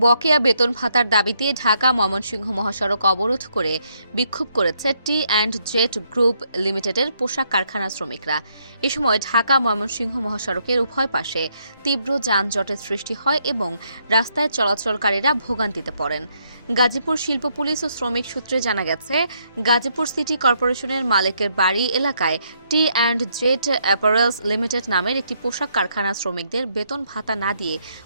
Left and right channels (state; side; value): inverted; both; correlation -0.74